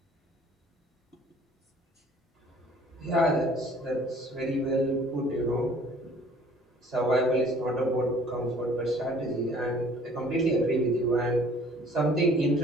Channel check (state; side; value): normal; both; correlation 0.54